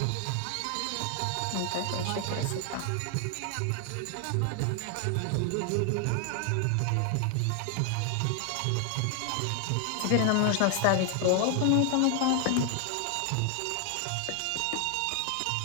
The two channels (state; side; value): different; both; correlation 0.00